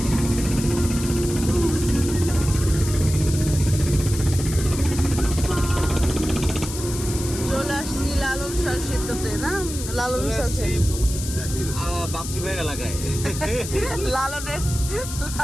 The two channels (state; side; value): noise; left; hiss, 9 dB below the sound